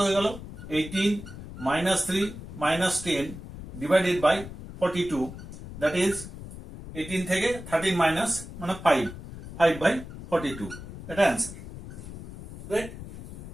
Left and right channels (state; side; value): noise; left; rumble, 12 dB below the sound